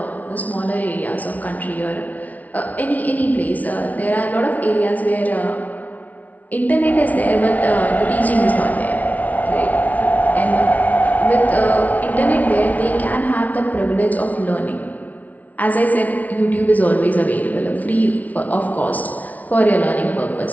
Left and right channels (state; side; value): late; right; 0.073 ms